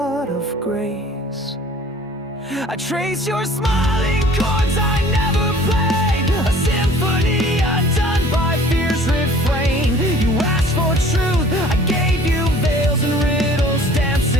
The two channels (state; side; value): normal; both; correlation 0.50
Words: of grace. I trace your smiling chords I never played, a symphony undone by fear's refrain. You asked for truth, I gave you veils and riddles,